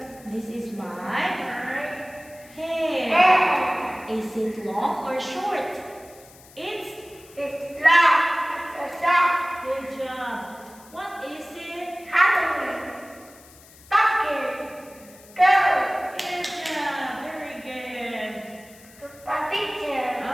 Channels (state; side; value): noise; left; hiss, 23 dB below the sound